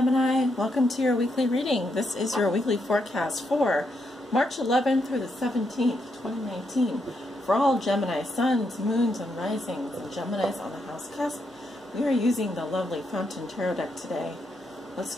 welcome to your weekly reading. This is your weekly forecast for March 11th through the 17th, 2019. For all Gemini suns, moons, and risings, and Geminis on the house cusp, we are using the lovely Fountain Tarot deck today. Let's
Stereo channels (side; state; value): both; normal; correlation 0.80